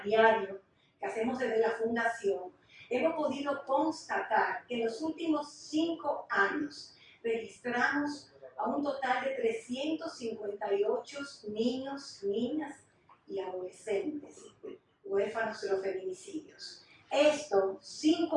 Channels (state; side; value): identical; both; correlation 1.00